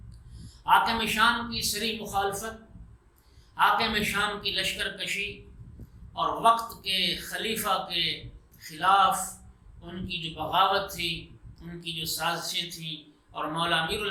حاکم شام کی سری مخالفت، حاکم شام کی لشکر کشی اور وقت کے خلیفہ کے خلاف ان کی جو بغاوت تھی، ان کی جو سازشیں تھیں، اور مولا امیر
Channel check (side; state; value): both; identical; correlation 1.00